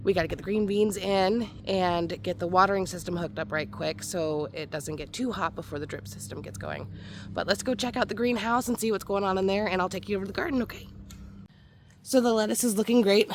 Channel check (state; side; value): identical; both; correlation 1.00